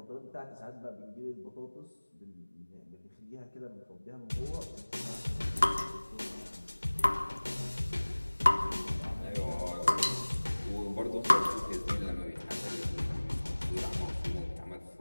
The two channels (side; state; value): both; inverted; correlation -1.00